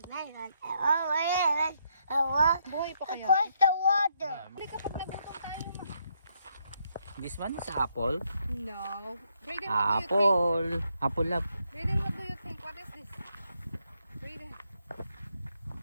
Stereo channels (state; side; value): inverted; both; correlation -0.76